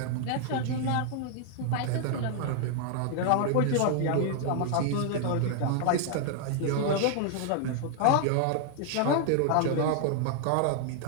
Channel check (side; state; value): both; different; correlation 0.00